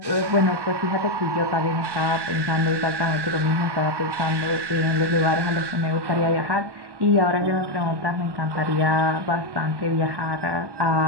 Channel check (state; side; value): late; left; 1.1 ms